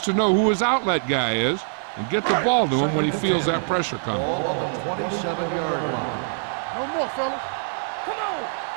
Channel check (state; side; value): silent; left; digital silence